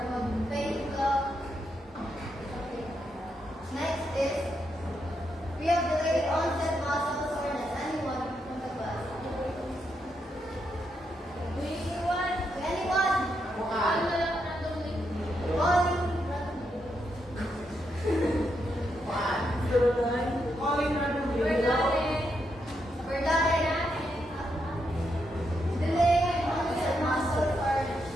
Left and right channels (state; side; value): normal; both; correlation 0.81